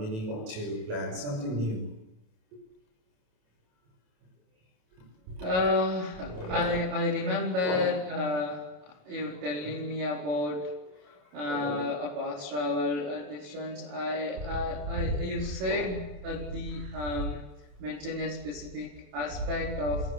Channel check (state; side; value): late; left; 28 ms